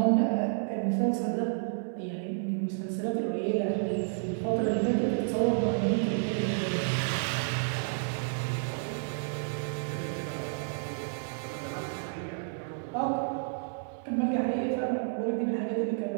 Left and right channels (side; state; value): left; silent; 57 dB below the other